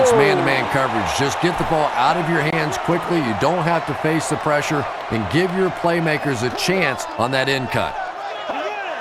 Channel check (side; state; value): both; identical; correlation 1.00